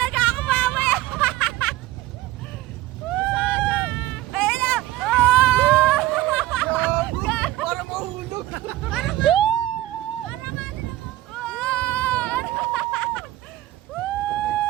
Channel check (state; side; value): quieter; left; 16.0 dB